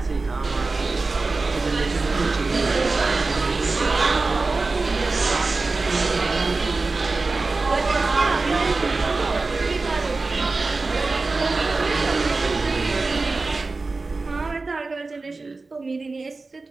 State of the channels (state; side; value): quieter; left; 3.7 dB